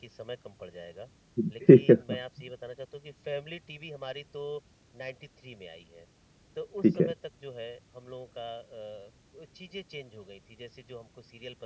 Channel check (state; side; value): identical; both; correlation 1.00